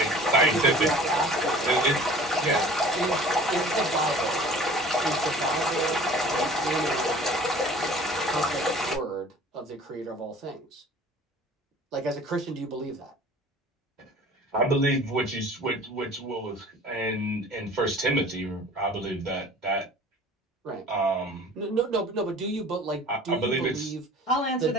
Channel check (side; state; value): both; normal; correlation 0.46